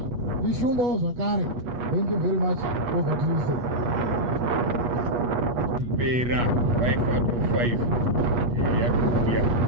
ishumbawo zvakare. Thank you very much. Over to you, sir. Pera 5 out of 5 yakuya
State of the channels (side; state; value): left; late; 8.3 ms